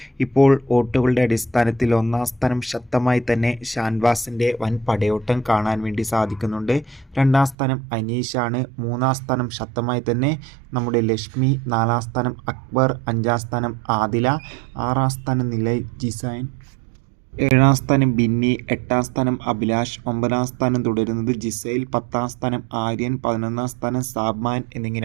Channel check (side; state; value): left; drops out; at 7.6 s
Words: ഇപ്പോൾ വോട്ടുകളുടെ അടിസ്ഥാനത്തിൽ ഒന്നാം സ്ഥാനം ശക്തമായി തന്നെ ഷാൻവാസിൻ്റെ വൻ പടയോട്ടം കാണാൻ വേണ്ടി സാധിക്കുന്നുണ്ട്. രണ്ടാം സ്ഥാനം അനീഷാണ്. മൂന്നാം സ്ഥാനം ശക്തമായി തന്നെ നമ്മുടെ ലക്ഷ്മി. നാലാം സ്ഥാനം അക്ബർ. അഞ്ചാം സ്ഥാനം ആദില. ആറാം സ്ഥാനം നിലയ് ജിസൈൻ. ഏഴാം സ്ഥാനം ബിന്നി. എട്ടാം സ്ഥാനം അഭിലാഷ്. ഒമ്പതാം സ്ഥാനം തുടരുന്നത് ജിസൈൽ. പത്താം സ്ഥാനം ആര്യൻ. 11ാം സ്ഥാനം സാബ്മാൻ